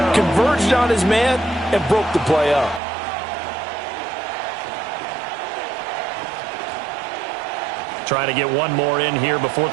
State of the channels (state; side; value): drops out; left; at 2.8 s